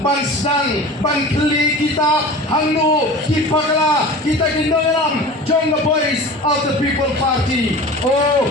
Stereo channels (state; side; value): normal; both; correlation 0.36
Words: sedang ban keli kita hangnu kipakla kita kindolam jong the boys of the people party oh